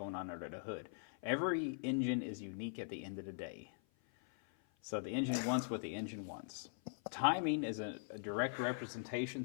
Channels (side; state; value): right; silent; 50 dB below the other